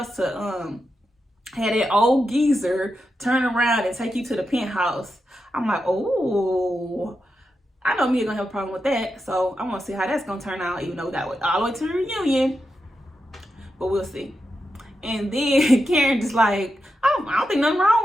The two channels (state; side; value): normal; both; correlation 0.87